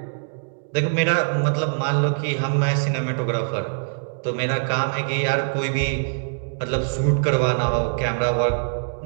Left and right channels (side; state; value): left; silent; digital silence